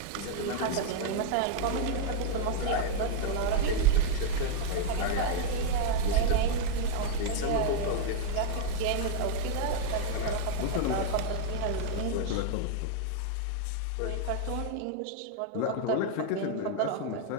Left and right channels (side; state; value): both; different; correlation 0.00